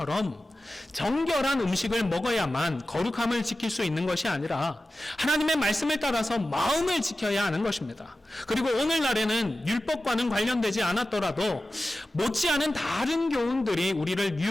정결한 음식을 먹어야만 거룩함을 지킬 수 있는 것이 아니라 하나님의 말씀을 따라서 마음을 지켜야 하는 것입니다. 그리고 오늘날에는 율법과는 관련되지 않았더라도 못지않은 다른 교훈들이 우리를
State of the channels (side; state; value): both; normal; correlation 0.94